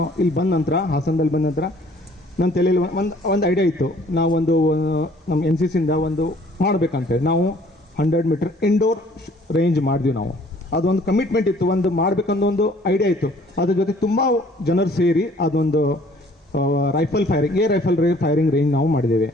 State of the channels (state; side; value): normal; both; correlation 0.57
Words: ಇಲ್ಲಿ ಬಂದ ನಂತರ, ಹಾಸನದಲ್ಲಿ ಬಂದ ನಂತರ ನನ್ನ ತಲೆಯಲ್ಲಿ ಒಂದು ಐಡಿಯಾ ಇತ್ತು. ನಾವು ನಮ್ಮ NCCಯಿಂದ ಒಂದು ಮಾಡಬೇಕಂತೇಳಿ ನಾವು 100 ಮೀಟರ್ ಇಂಡೋರ್ ರೇಂಜ್ ಮಾಡಿದ್ವಿ. ನಾವು ಅದೊಂದು ಕಮಿಟ್ಮೆಂಟ್ ಇತ್ತು, ಒಂದು ಮಾಡಬೇಕನ್ನೋ ಒಂದು ಐಡಿಯಾ ಇತ್ತು. ಅದ್ರ ಜೊತೆ ತುಂಬ ಜನರು ಸೇರಿ ಅದೊಂದು ರೈಫಲ್ ಫೈರಿಂಗ್ ರೇಂಜ್ ನಾವು ಮಾಡಿದ್ದೇವೆ.